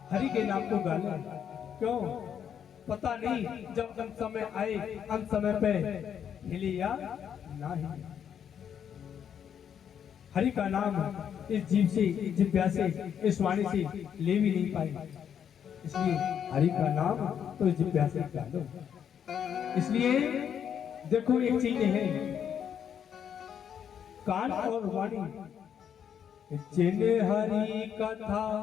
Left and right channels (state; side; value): quieter; right; 8.5 dB